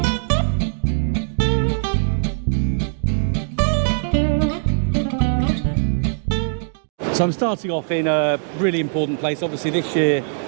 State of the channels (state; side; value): silent; left; digital silence